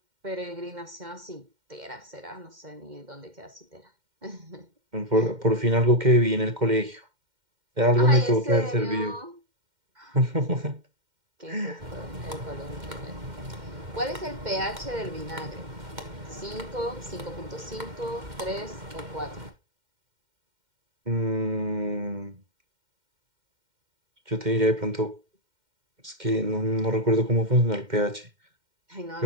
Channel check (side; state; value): left; late; 2.1 ms